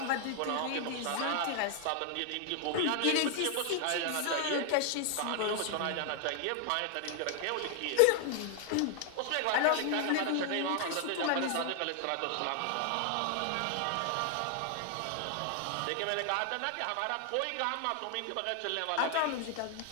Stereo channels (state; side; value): different; both; correlation 0.00